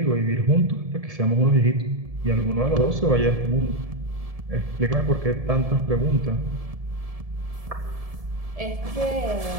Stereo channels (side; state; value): left; late; 1.7 ms